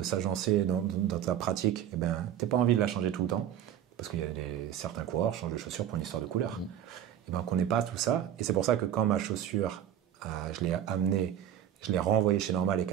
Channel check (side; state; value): left; quieter; 10.4 dB